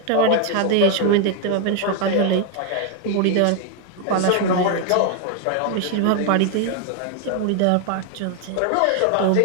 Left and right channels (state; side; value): different; both; correlation 0.01